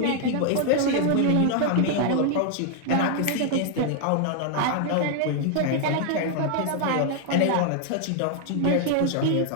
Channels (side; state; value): both; different; correlation 0.00